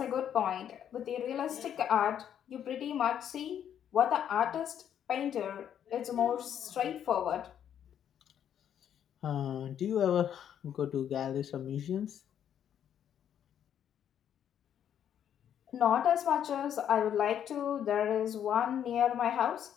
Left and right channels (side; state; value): right; quieter; 9.5 dB